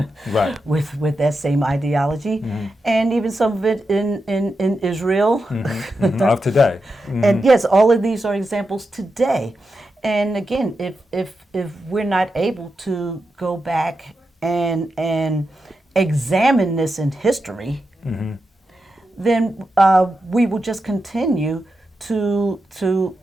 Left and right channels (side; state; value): both; normal; correlation 0.88